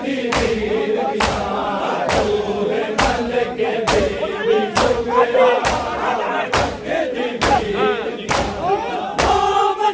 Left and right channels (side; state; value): both; identical; correlation 1.00